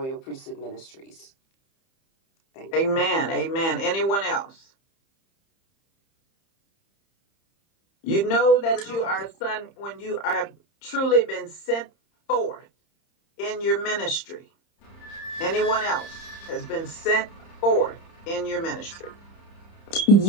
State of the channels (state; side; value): late; right; 30 ms